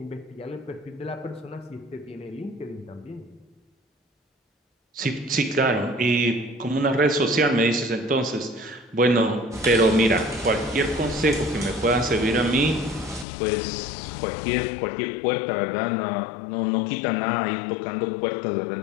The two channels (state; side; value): drops out; right; at 13.2 s